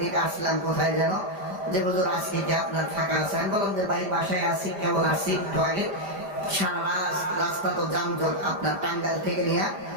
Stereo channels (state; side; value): late; left; 5.0 ms